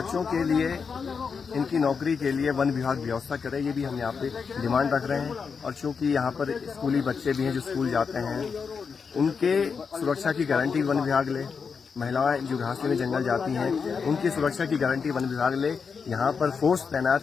के लिए, इनकी नौकरी के लिए वन विभाग व्यवस्था करे, ये भी हम यहाँ पे डिमांड रख रहे हैं। और चूंकि यहाँ पर स्कूली बच्चे भी हैं जो स्कूल जाते हैं, उनके सुरक्षा की गारंटी वन विभाग ले, महिलाएं जो घास में जंगल जाती हैं उनकी सुरक्षा की गारंटी वन विभाग ले, यहाँ पर फोर्स तैनात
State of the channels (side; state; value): right; quieter; 5.7 dB